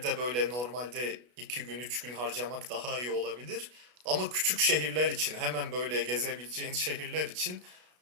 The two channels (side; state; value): left; late; 33 ms